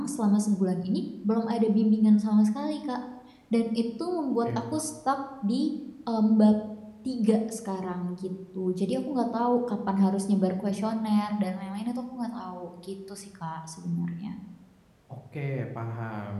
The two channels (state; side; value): identical; both; correlation 1.00